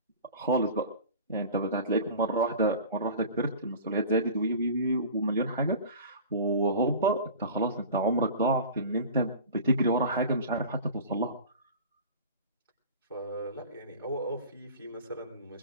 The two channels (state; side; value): inverted; both; correlation -0.38